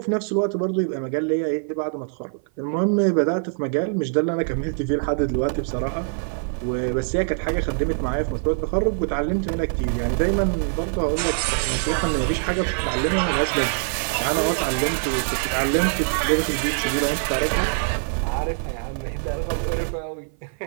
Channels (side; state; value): left; silent; 55 dB below the other